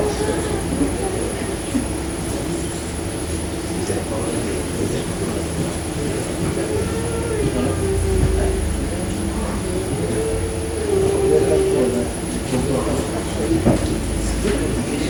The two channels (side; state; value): both; identical; correlation 1.00